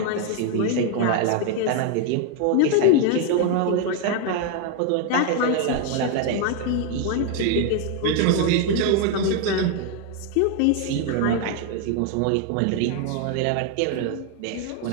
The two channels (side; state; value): both; different; correlation 0.01